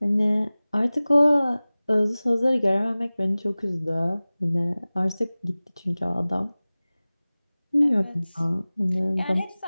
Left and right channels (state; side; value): inverted; both; correlation -0.99